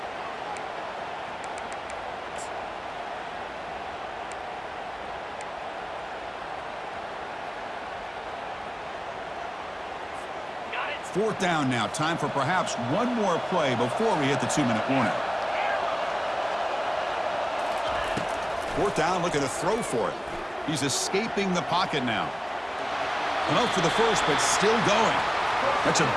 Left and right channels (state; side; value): identical; both; correlation 1.00